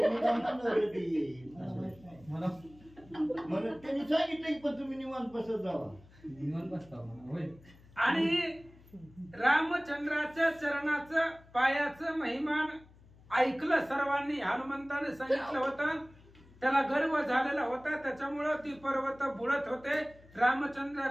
मला त्यांनी सांगितलं की पण तुम्ही निवांत बसत जावा. निवांत बसता म्हणा होय. आणि रामचंद्राच्या चरणाचं पायाचं महिमान ऐकलं सर्वांनी. हनुमंताने सांगितलं होतं, त्याला गर्व झालेला होता, त्याच्यामुळं ती पर्वत बुडत होते.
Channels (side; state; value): left; noise; hum, 24 dB below the sound